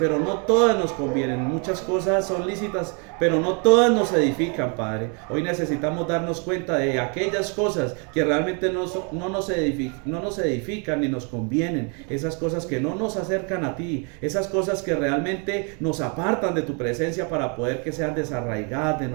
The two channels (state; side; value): quieter; left; 36.6 dB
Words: no todas nos convienen. Muchas cosas son lícitas, pero no todas nos edifican, Padre. Hoy necesitamos darnos cuenta de aquellas cosas que realmente no nos edifican ni nos convienen. Esas cosas que no nos acercan a ti. Esas cosas que realmente nos apartan de tu presencia para poder que sean desarraigadas de